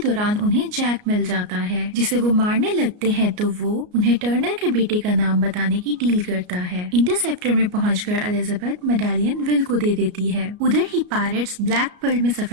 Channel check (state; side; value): late; left; 33 ms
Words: उन्हें जैक मिल जाता है, जिसे वो मारने लगते हैं तो वो उन्हें टर्नर के बेटे का नाम बताने की डील करता है। इंटरसेप्टर में पहुंचकर एलिजाबेथ मेडालियन विल को दे देती है। उधर ही पायरेट्स ब्लैक पर्ल में